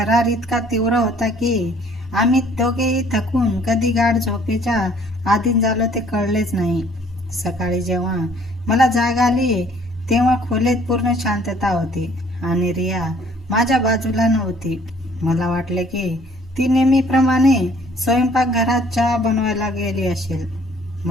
इतका तीव्र होता की आम्ही दोघेही थकून कधी गाढ झोपेच्या अधीन झालो ते कळलेच नाही. सकाळी जेव्हा मला जाग आली तेव्हा खोलीत पूर्ण शांतता होती आणि रिया माझ्या बाजूला नव्हती. मला वाटले की ती नेहमीप्रमाणे स्वयंपाकघरात चहा बनवायला गेली असेल,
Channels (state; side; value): normal; both; correlation 0.58